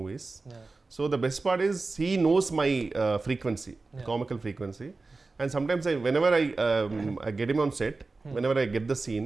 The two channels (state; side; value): quieter; left; 3.7 dB